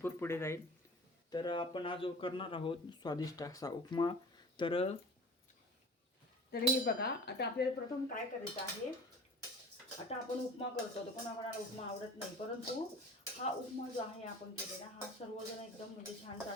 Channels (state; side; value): normal; both; correlation 0.41